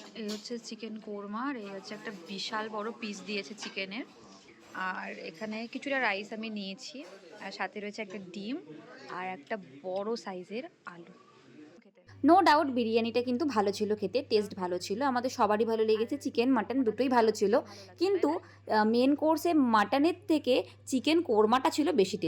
এই হচ্ছে চিকেন কোরমা, আর এই হচ্ছে একটা বিশাল বড় পিস দিয়েছে চিকেনের। আর এখানে কিছুটা রাইস আমি নিয়েছি, আর সাথে রয়েছে একটা ডিম আর একটা বড় সাইজের আলু। নো ডাউট বিরিয়ানিটা কিন্তু ভালো ছিল, খেতে টেস্ট ভালো ছিল, আমাদের সবারই ভালো লেগেছে, চিকেন মাটন দুটোই ভালো ছিল। কিন্তু মেন কোর্সে মাটনের থেকে চিকেন কোরমাটা ছিল বেশি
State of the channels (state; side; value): identical; both; correlation 1.00